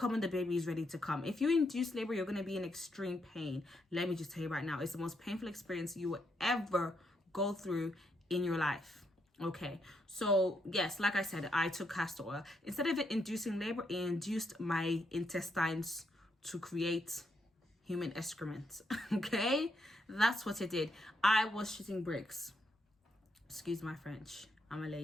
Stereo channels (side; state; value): both; normal; correlation 0.78